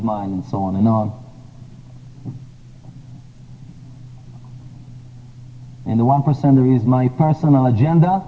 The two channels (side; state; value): both; identical; correlation 1.00